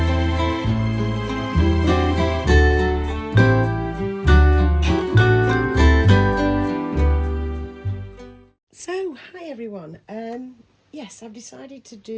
So, hi everyone. Yes, I've decided to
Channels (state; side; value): identical; both; correlation 1.00